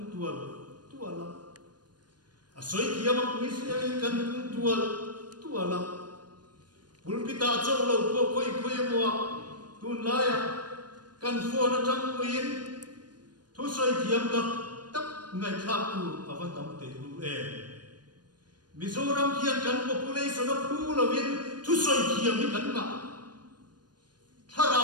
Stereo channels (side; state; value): left; late; 0.70 ms